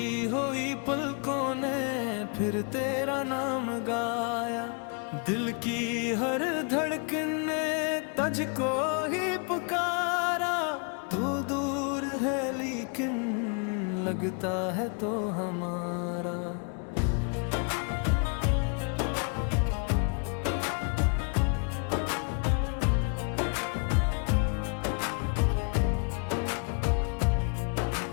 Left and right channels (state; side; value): quieter; right; 38.3 dB